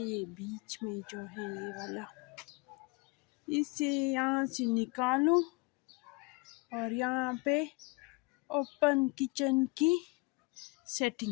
ये बीच में जो है ये वाला, इसे यहाँ से निकालूं और यहाँ पे ओपन किचन की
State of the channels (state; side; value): quieter; right; 27.3 dB